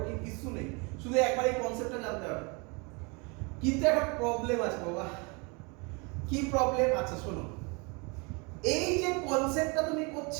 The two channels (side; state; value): left; quieter; 30.3 dB